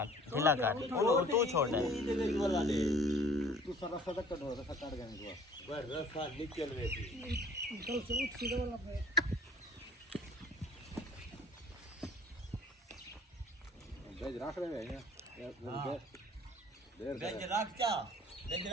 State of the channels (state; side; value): normal; both; correlation 0.52